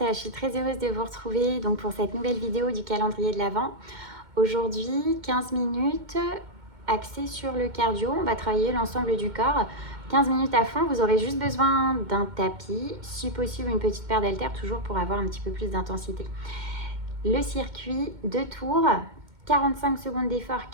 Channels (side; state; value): left; late; 2.1 ms